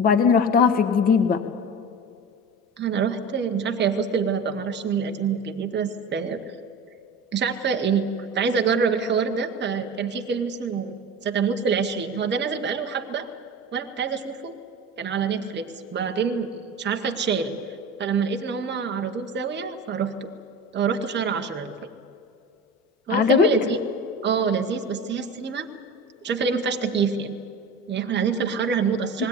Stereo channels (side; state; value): both; normal; correlation 0.32